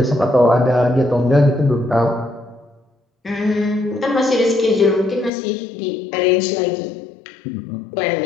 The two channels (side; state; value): right; drops out; at 5.3 s